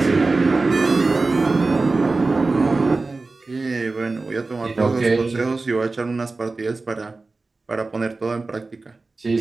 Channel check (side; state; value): left; quieter; 3.6 dB